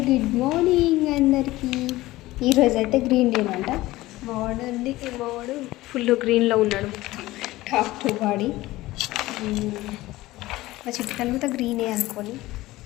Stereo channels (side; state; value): right; quieter; 17.9 dB